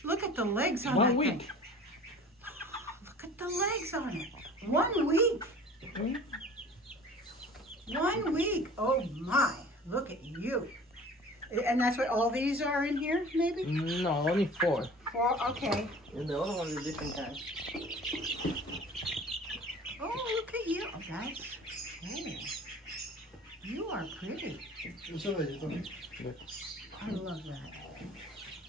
Look at the legs on 1 that week. thing. Look at the legs on it. 1 week. 1 week. Oh my. Look at you. And that's what all these are in here, maybe? No, only 4. 4, okay. And the other one is different kind. Oh, look at you. Oh, that's cool. You are pretty. I love that.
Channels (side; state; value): both; normal; correlation 0.44